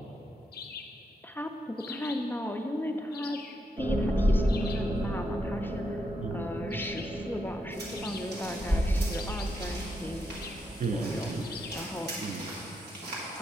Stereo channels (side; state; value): both; normal; correlation 0.81